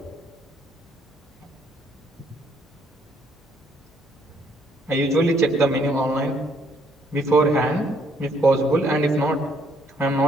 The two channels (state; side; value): normal; both; correlation 0.67